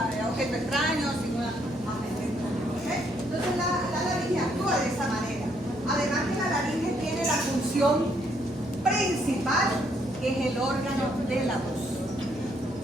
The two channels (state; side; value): normal; both; correlation 0.71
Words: objeto extraño, sin ninguna agente extraño. ¿Okay? Entonces la laringe actúa de esa manera. Además que la laringe tiene la función principal, que es el órgano de la voz.